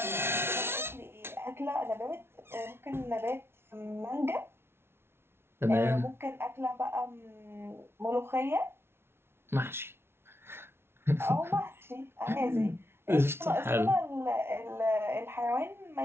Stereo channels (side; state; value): left; late; 0.12 ms